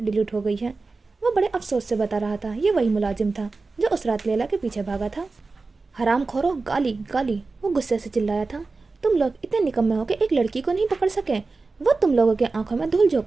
ہو گئی ہے، وہ بڑے افسوس سے بتا رہا تھا۔ یہ وہی ملازم تھا جو اس رات لیلا کے پیچھے بھاگا تھا۔ حرام کھورو، گالی گالی، وہ غصے سے چلایا تھا۔ تم لوگ اتنے نکمے ہو کہ ایک لڑکی کو نہیں پکڑ سکے، وہ تم لوگوں کے آنکھوں میں دھول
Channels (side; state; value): left; quieter; 3.9 dB